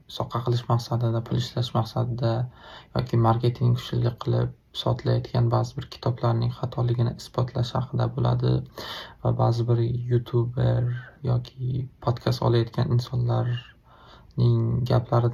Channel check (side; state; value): both; identical; correlation 1.00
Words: soqqa qilish maqsadida, pul ishlash maqsadida yoki marketing kuchli qilib sotilayotgan ba'zi bir kitoblarning xatoligini isbotlash haqida bo'ladi va ba'zi bir youtuber yoki podkast olayotgan insonlarning